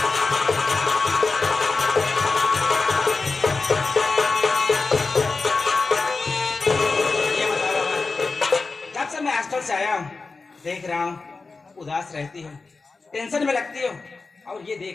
से आया हूँ, देख रहा हूँ उदास रहती हो, टेंशन में लगती हो, और ये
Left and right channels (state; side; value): quieter; right; 4.0 dB